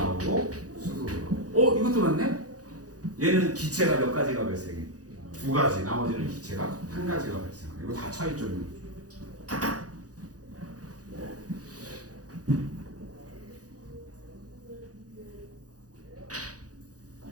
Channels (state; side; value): late; left; 0.67 ms